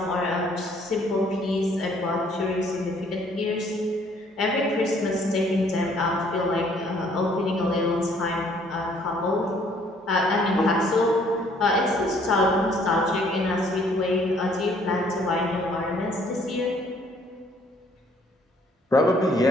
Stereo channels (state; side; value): normal; both; correlation 0.62